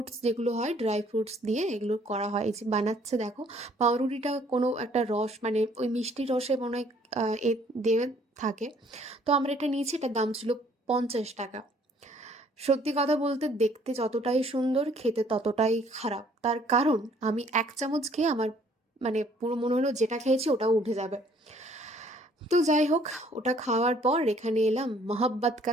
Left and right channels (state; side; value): normal; both; correlation 0.61